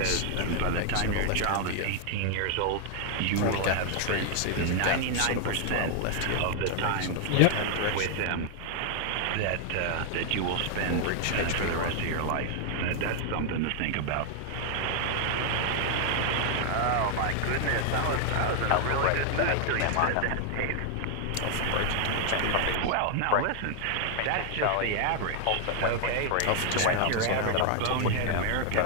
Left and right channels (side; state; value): both; different; correlation 0.00